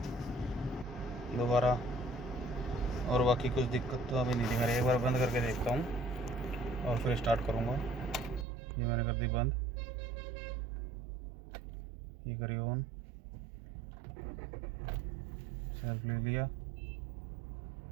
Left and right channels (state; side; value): drops out; left; at 8.5 s